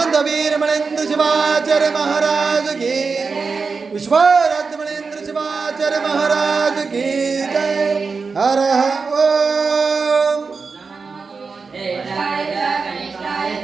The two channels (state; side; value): quieter; left; 4.7 dB